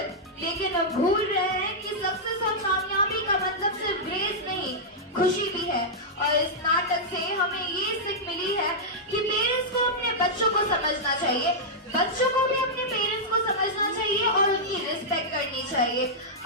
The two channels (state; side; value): normal; both; correlation -0.09